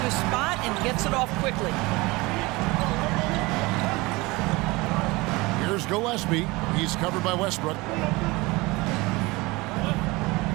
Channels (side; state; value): left; quieter; 22.9 dB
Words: his spot and gets it off quickly. Here's Gillespie. He's covered by Westbrook.